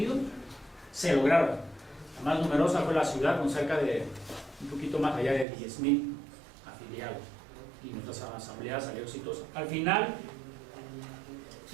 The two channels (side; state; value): left; drops out; at 5.5 s